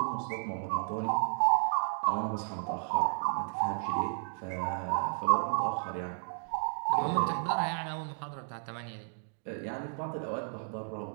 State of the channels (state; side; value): silent; left; digital silence